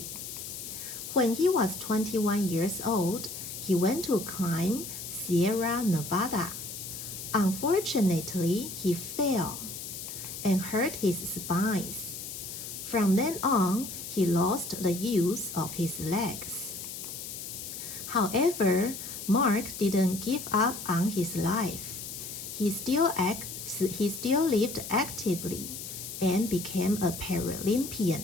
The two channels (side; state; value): left; noise; hiss, 9 dB below the sound